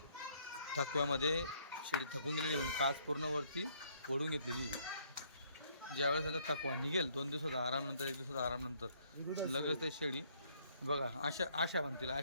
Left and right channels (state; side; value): inverted; both; correlation -0.66